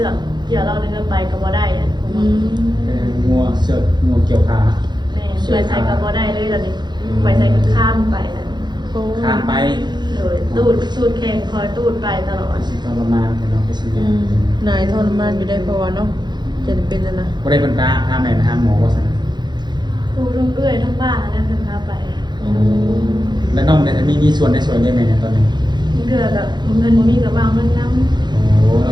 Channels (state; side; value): late; left; 0.21 ms